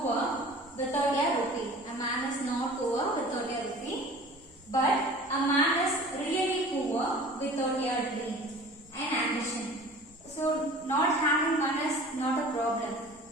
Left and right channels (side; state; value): both; normal; correlation 0.43